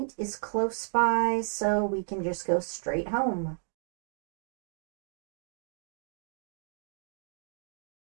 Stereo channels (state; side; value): silent; left; digital silence